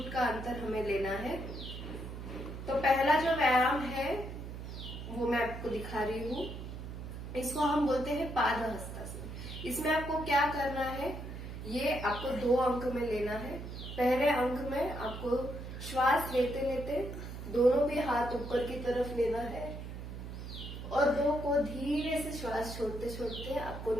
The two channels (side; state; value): right; noise; hum, 9 dB below the sound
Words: का अंतर हमें लेना है। तो पहला जो व्यायाम है वो मैं आपको दिखा रही हूँ, इसको हम बोलते हैं पाद हस्तासन। इसमें आपको क्या करना है, ये आपको 2 अंक में लेना है। पहले अंक में आपको श्वास लेते लेते दोनों भी हाथ ऊपर की तरफ लेना है और 2 को धीरे से श्वास छोड़ते छोड़ते आपको